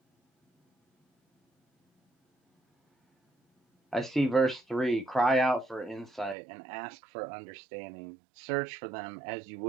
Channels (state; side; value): drops out; left; at 6.4 s